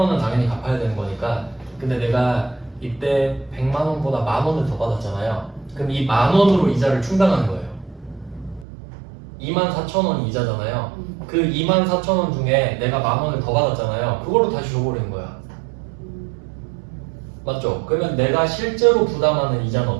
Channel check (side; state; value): left; drops out; at 8.7 s